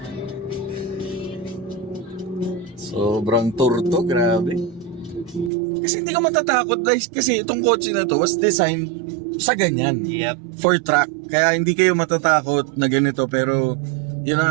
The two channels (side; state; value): left; drops out; at 5.5 s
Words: Sobrang turto, grabe. Kasi hindi ka matatakot guys, kasi itong kotse na to was designed sa ganyan. Yep. For track. Kaya hindi kayo matatakot na ganito, pero yun na